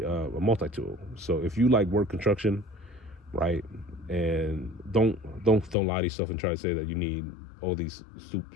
a multi-tool. So if you like work construction, right, and don't lie to yourself and try to say that you need all these super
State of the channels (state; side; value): drops out; right; at 5.8 s